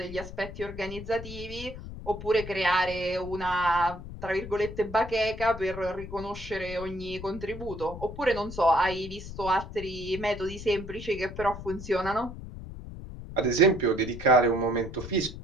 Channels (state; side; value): noise; left; rumble, 11 dB below the sound